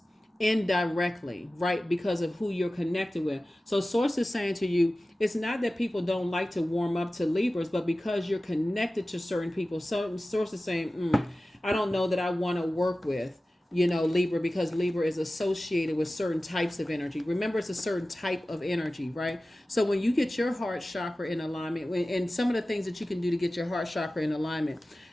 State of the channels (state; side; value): normal; both; correlation 0.96